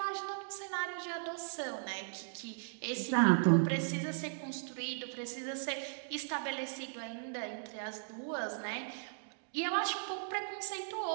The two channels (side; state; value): left; silent; digital silence